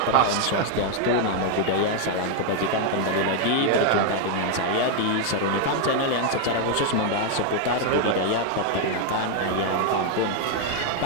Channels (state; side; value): different; both; correlation 0.00